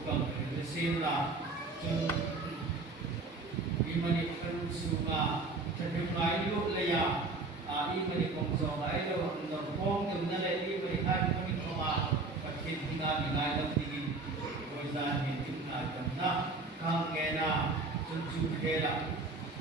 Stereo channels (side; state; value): left; quieter; 3.5 dB